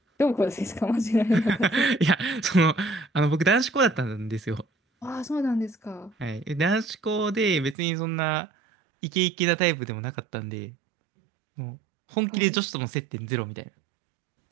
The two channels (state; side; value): drops out; left; at 7.8 s